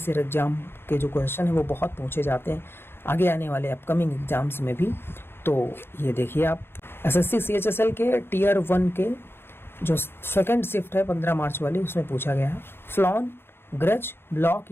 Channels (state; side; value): late; right; 0.11 ms